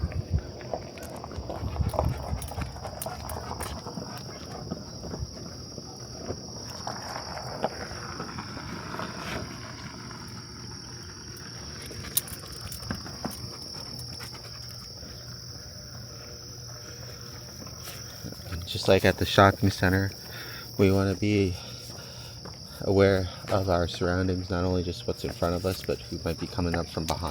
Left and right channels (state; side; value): identical; both; correlation 1.00